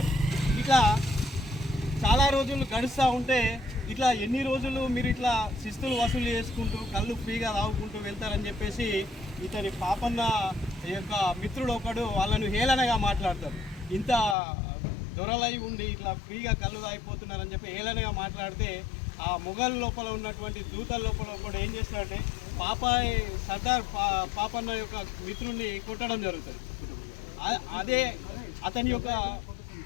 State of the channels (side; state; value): right; drops out; at 14.4 s